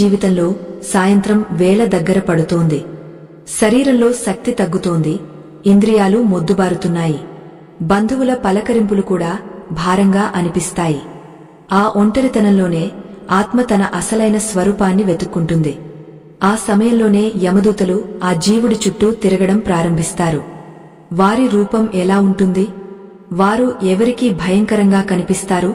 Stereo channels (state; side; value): identical; both; correlation 1.00